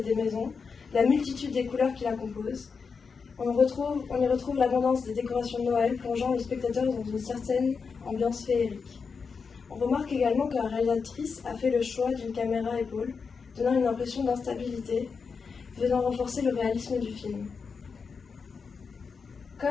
des maisons, la multitude des couleurs qui la composent. On y retrouve l'abondance des décorations de Noël, plongeant le spectateur dans une certaine ambiance féerique. On remarque également que la réalisatrice a fait le choix d'une caméra à épaule, donnant une impression d'instabilité, venant renforcer le réalisme du film.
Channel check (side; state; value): right; quieter; 5.4 dB